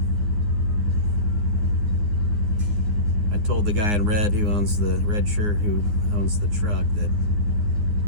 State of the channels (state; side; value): late; left; 9.7 ms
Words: I told the guy in red who owns the red shirt who owns the truck that